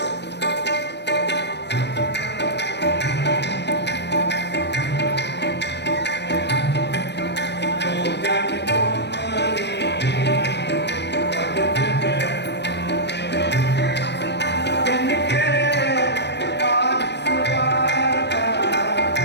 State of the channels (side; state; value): right; late; 0.50 ms